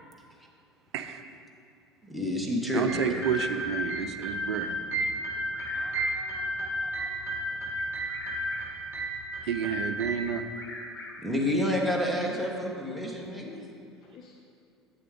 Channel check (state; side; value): normal; both; correlation 0.38